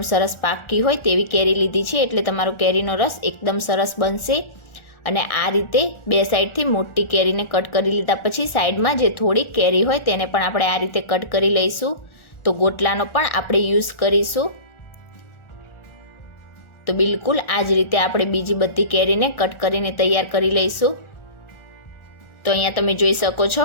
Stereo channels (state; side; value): late; right; 1.4 ms